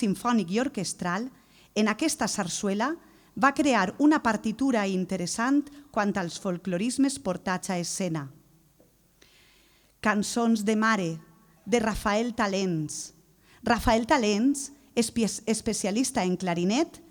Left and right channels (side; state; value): both; identical; correlation 1.00